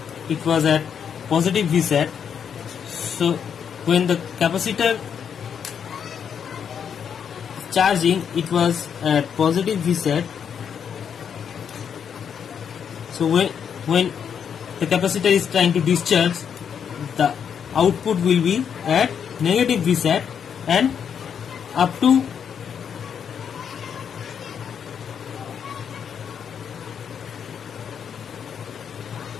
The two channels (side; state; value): right; quieter; 7.7 dB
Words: it was at positive Vset. So when the capacitor charging, it was at positive Vset. So when the capacitor is trying to discharge, the output will be at negative Vset, and up to